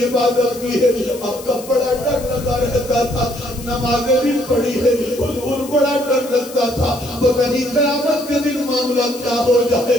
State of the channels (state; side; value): noise; left; hiss, 16 dB below the sound